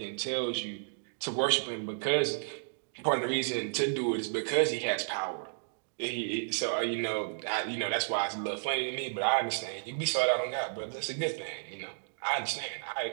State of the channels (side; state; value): left; silent; digital silence